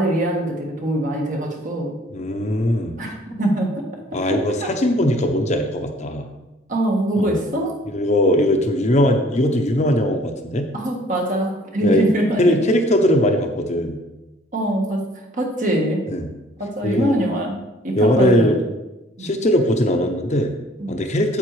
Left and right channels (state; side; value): normal; both; correlation 0.57